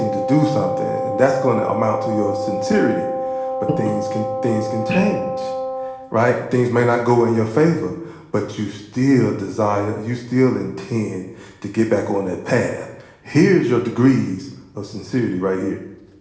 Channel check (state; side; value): identical; both; correlation 1.00